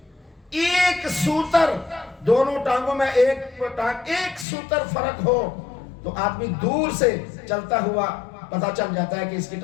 ایک سوتر، دونوں ٹانگوں میں ایک سوتر فرق ہو تو آدمی دور سے چلتا ہوا پتہ چل جاتا ہے کہ اس کی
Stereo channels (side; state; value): right; drops out; at 4.5 s